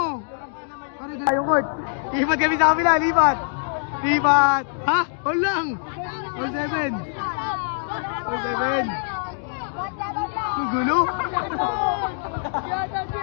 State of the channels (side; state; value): right; silent; digital silence